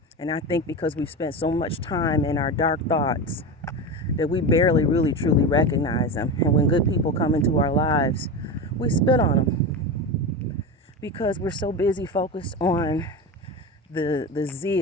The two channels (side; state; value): both; normal; correlation 0.22